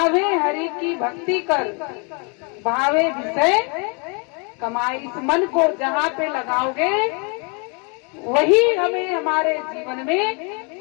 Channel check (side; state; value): right; quieter; 34.7 dB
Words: हरि की भक्ति कर, भावे विषय कमाए। इस मन को जहाँ पे लगाओगे वही हमें हमारे जीवन